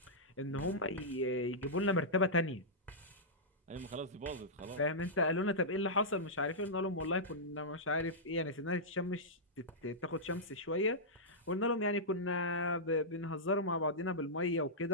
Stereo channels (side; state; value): both; normal; correlation -0.12